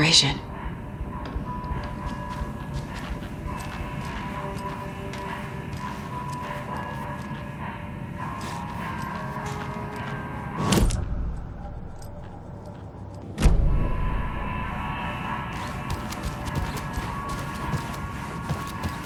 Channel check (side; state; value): both; identical; correlation 1.00